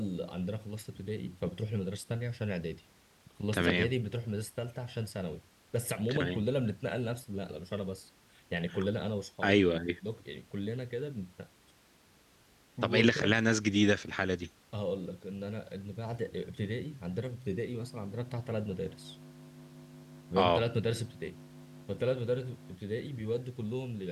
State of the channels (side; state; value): both; identical; correlation 1.00